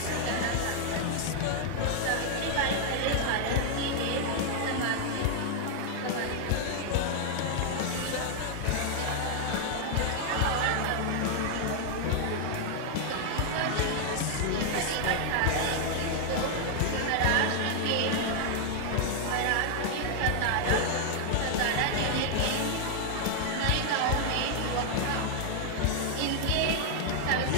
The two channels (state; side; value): different; both; correlation 0.00